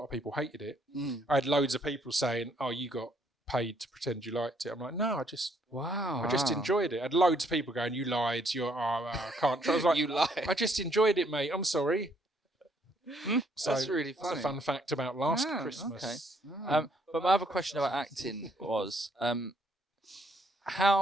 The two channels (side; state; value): both; normal; correlation 0.68